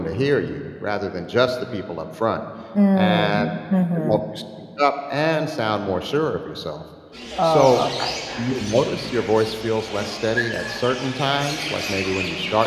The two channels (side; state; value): both; identical; correlation 1.00